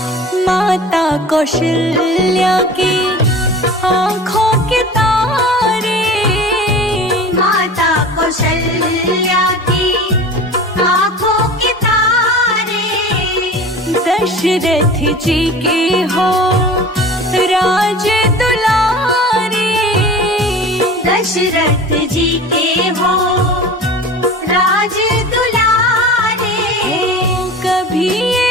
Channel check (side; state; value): both; normal; correlation 0.38